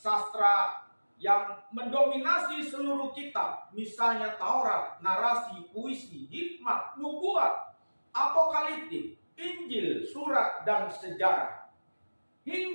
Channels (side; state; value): both; inverted; correlation -1.00